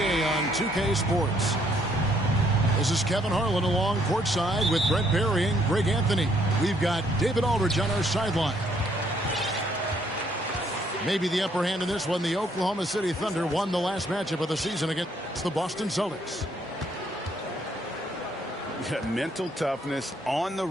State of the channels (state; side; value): normal; both; correlation 0.68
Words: on 2K Sports. This is Kevin Harlan along courtside with Brent Barry and Greg Anthony. We've got David Aldridge on our sideline. Maybe the upper hand in this one. The Oklahoma City Thunder won the last matchup of the season against the Boston Celtics. Mental toughness on the